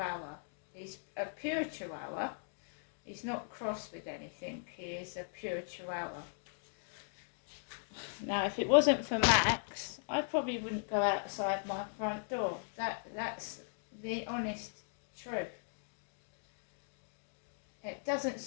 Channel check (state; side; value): silent; right; digital silence